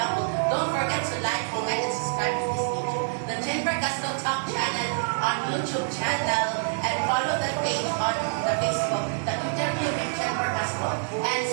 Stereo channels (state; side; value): silent; left; digital silence